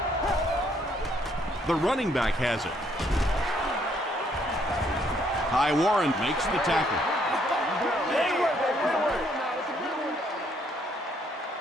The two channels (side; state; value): both; normal; correlation 0.68